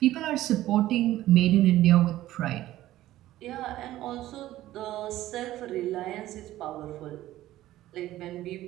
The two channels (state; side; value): quieter; left; 14.8 dB